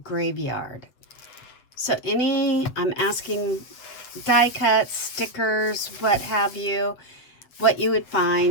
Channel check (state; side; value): late; right; 8.1 ms